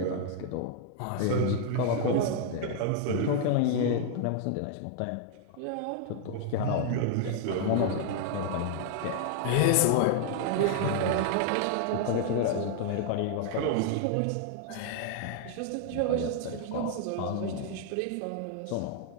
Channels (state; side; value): different; both; correlation 0.00